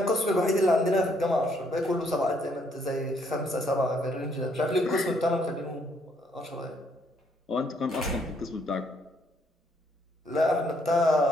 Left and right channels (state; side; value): normal; both; correlation 0.70